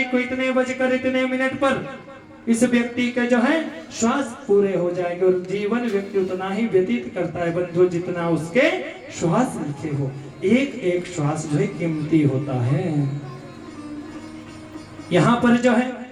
को, इतने बजकर इतने मिनट पर इस व्यक्ति के जो है श्वास पूरे हो जाएंगे। और जीवन व्यक्ति उतना ही व्यतीत करता है बंधु जितना उसके श्वास लिखे हो। एक एक श्वास जो है कीमती होता है। यहाँ पर जो है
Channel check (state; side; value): identical; both; correlation 1.00